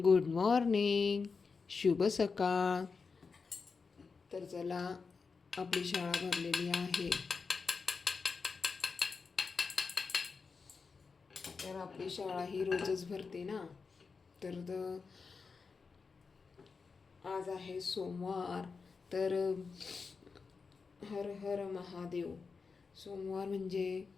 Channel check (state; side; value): quieter; right; 4.9 dB